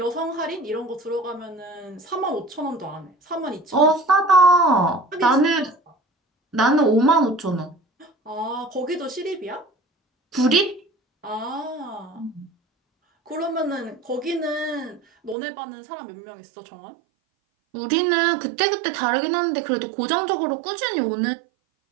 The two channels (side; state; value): left; drops out; at 15.4 s